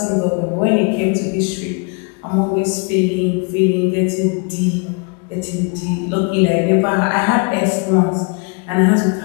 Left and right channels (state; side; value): quieter; right; 34.0 dB